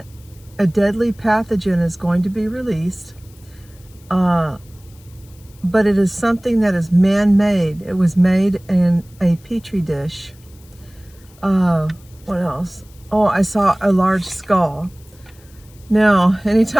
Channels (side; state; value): left; noise; hiss, 28 dB below the sound